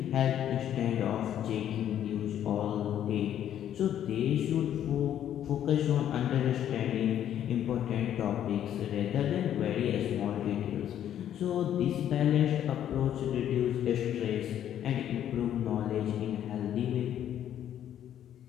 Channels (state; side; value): quieter; right; 10.6 dB